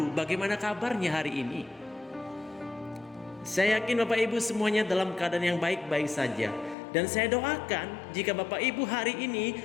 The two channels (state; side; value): drops out; right; at 6.8 s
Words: bagaimana kabarnya hari ini? Saya yakin Bapak Ibu semuanya dalam keadaan yang baik-baik saja. Dan saya doakan jika Bapak Ibu hari